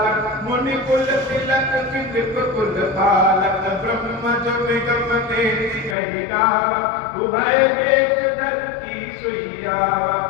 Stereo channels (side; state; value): right; drops out; at 6.0 s